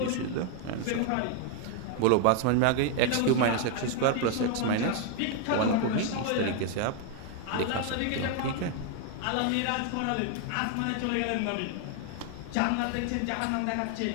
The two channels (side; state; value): both; different; correlation 0.01